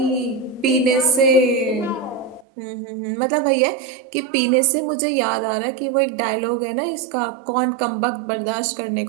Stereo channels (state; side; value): drops out; left; at 2.5 s